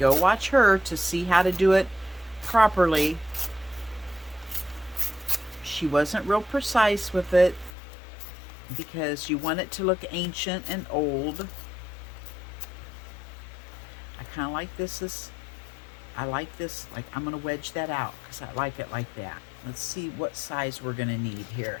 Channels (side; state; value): right; drops out; at 7.8 s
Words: watch her to see how to do it properly. She wasn't real precise with it because you want it to look ancient and old. I kind of like this. I like this, like I'm going to wedge that out because I like it like that. Let's see what size we're going to need here.